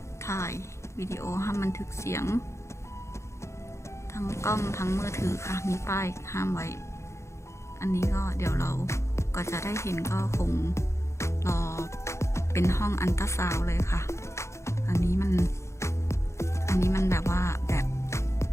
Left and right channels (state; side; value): late; right; 0.14 ms